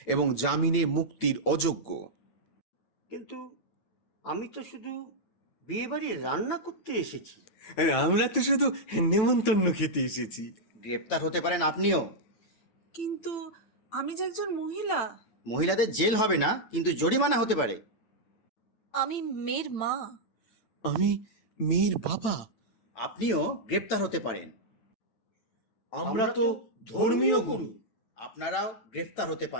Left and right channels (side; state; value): right; late; 9.0 ms